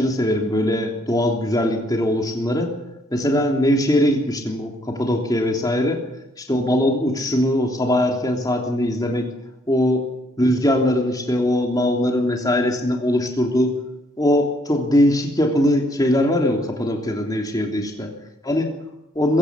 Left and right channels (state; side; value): normal; both; correlation 0.68